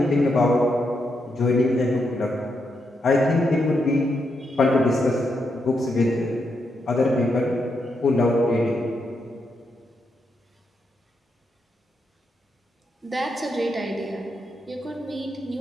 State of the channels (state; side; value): normal; both; correlation 0.82